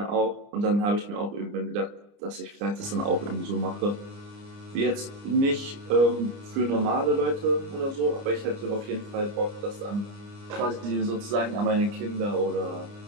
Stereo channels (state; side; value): late; left; 29 ms